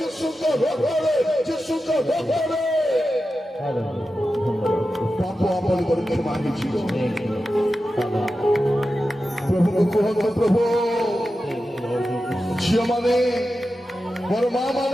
ରକ୍ତରେ ଯୀଶୁଙ୍କ ରକ୍ତରେ ପାପ ଆପଣଙ୍କର କ୍ଷମା ହେଇଯିବ। ପ୍ରଭୁଙ୍କୁ କୁହନ୍ତୁ, ପ୍ରଭୁ ଝିଅ ମାନେ, ମୋର ମା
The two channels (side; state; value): both; normal; correlation 0.92